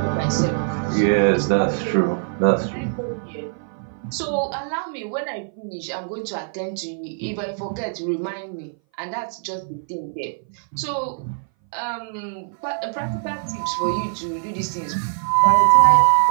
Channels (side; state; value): left; silent; 59 dB below the other